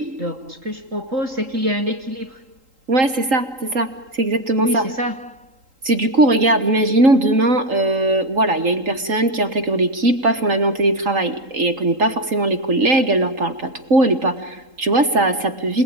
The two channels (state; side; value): late; left; 3.8 ms